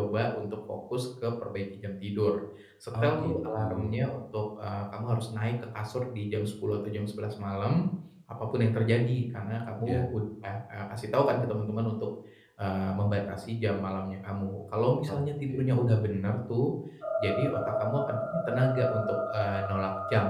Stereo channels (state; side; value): identical; both; correlation 1.00